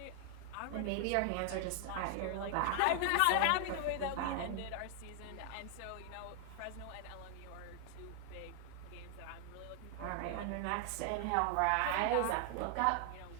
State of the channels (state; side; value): different; both; correlation 0.00